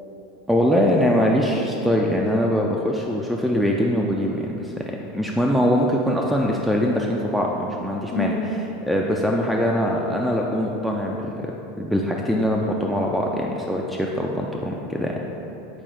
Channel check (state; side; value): normal; both; correlation 0.60